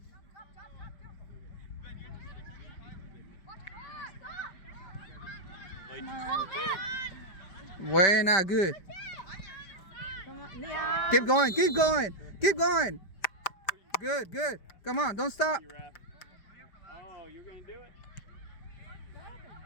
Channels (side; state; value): right; late; 5.1 ms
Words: Come on. Buena, good. Come on. Liam. Keep going, keep going, keep going. Good, good. Come on, don't stop. You ref. Oh, you're going to do it?